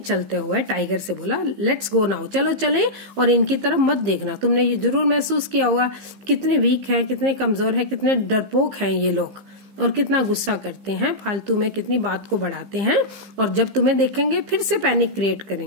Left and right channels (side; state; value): left; late; 15 ms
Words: चलते हुए टाइगर से बोला लेट्स गो नाउ, चलो चले और इनकी तरफ मत देखना. तुमने ये जरूर महसूस किया होगा कितने वीक हैं, कितने कमजोर हैं, कितने डरपोक हैं ये लोग, और कितना गुस्सा करते हैं फालतू में, कितनी बात को बढ़ाते हैं, और जब तुम्हें देखेंगे फिर से पैनिक क्रिएट